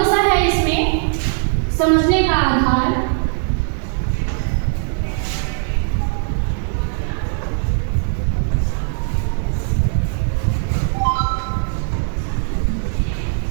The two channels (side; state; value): left; silent; 66 dB below the other